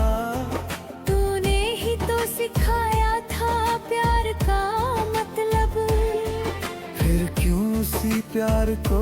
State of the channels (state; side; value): identical; both; correlation 1.00